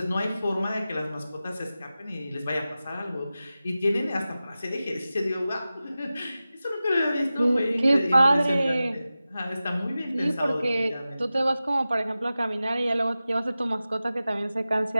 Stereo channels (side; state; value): both; inverted; correlation -0.95